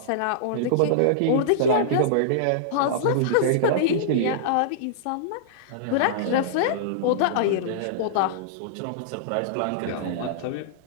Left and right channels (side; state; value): both; different; correlation -0.02